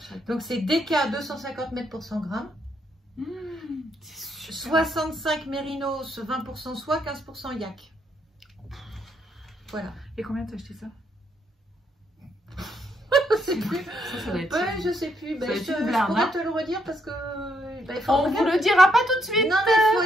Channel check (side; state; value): both; normal; correlation 0.75